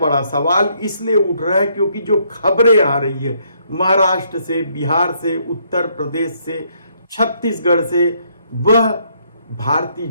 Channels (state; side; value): inverted; both; correlation -0.71